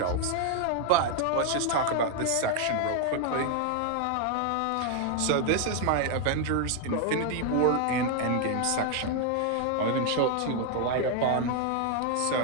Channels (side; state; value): both; different; correlation 0.00